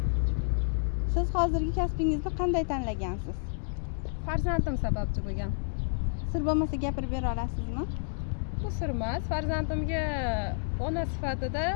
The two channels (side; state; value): right; silent; digital silence